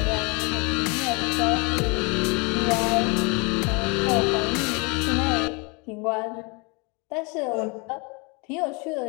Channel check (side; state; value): right; quieter; 30.6 dB